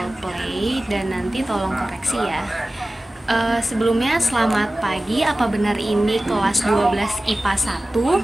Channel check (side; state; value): both; normal; correlation 0.96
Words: play dan nanti tolong koreksi ya. Sebelumnya selamat pagi. Apa benar ini kelas 12 IPA